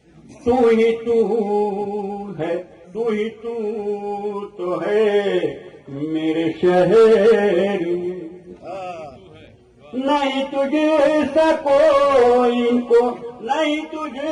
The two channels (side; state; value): both; identical; correlation 1.00